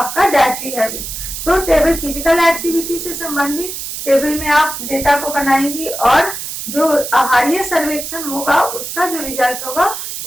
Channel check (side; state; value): right; noise; hiss, 7 dB below the sound